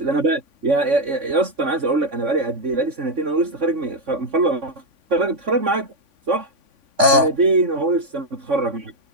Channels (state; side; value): late; left; 3.5 ms